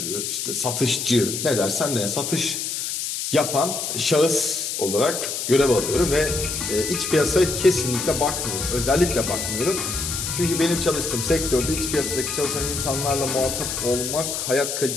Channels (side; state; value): left; noise; hiss, 3 dB below the sound